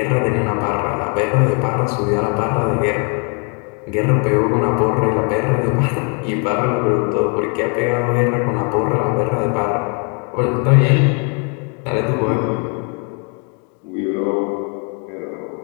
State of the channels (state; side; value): quieter; right; 37.2 dB